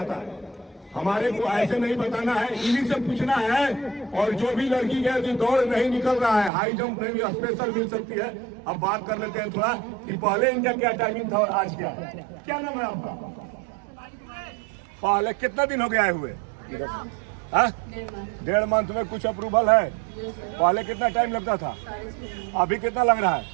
है। हमारे को ऐसे नहीं बताना है, इन्हीं से पूछना है। और जो भी लड़की है जो दौड़ नहीं निकल रहा है, हाई जंप में भी स्पेशल मिल सकती है। अब बात कर लेते हैं थोड़ा कि पहले इनका क्या टाइमिंग था और आज क्या है। क्या नाम है आपका? पहले कितना दिन हो गया है हुए? 1.5 मंथ में कुछ अप्रूवल है। पहले कितना टाइम लगता था, अभी कितना लग रहा है?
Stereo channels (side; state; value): left; drops out; at 6.5 s